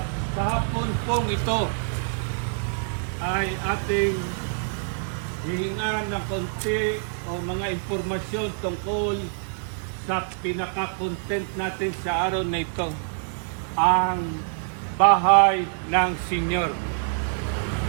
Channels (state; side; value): silent; left; digital silence